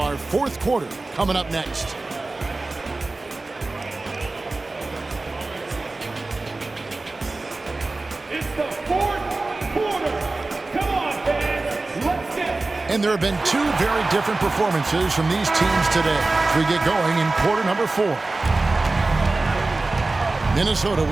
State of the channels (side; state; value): left; quieter; 3.3 dB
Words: 4th quarter coming up next. It's the 4th quarter. Come on, fans. Let's get it. And there have been 2 very different performances from these teams today as we get going in quarter number 4. Minnesota